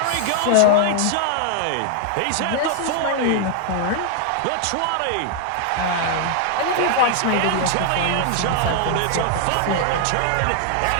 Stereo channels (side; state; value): both; different; correlation 0.00